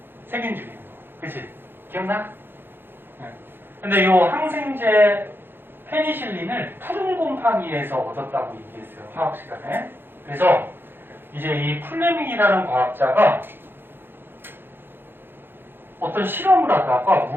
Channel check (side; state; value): left; late; 0.10 ms